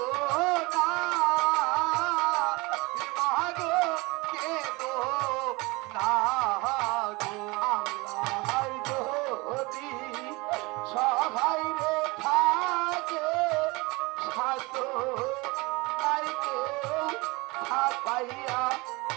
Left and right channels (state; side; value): quieter; left; 24.7 dB